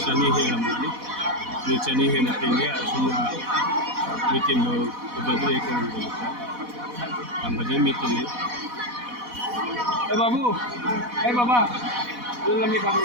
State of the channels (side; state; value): left; late; 4.1 ms